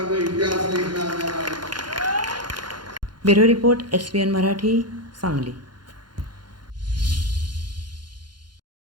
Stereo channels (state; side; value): late; left; 0.71 ms